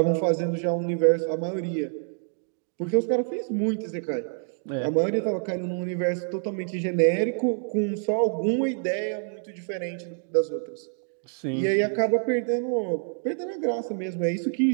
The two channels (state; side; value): silent; left; 60 dB below the other